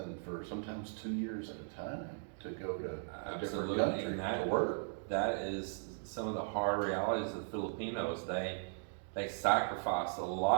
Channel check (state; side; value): silent; left; digital silence